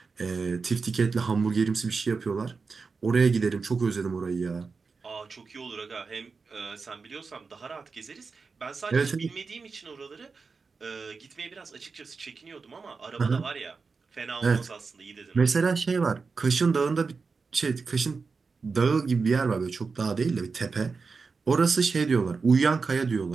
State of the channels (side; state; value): left; quieter; 4.7 dB